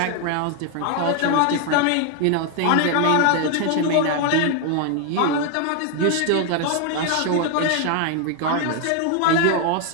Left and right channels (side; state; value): both; different; correlation 0.01